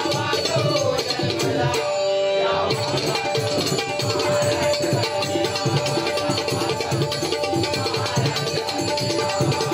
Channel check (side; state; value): both; identical; correlation 1.00